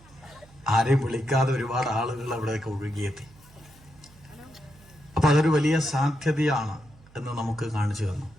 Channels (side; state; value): right; noise; hum, 25 dB below the sound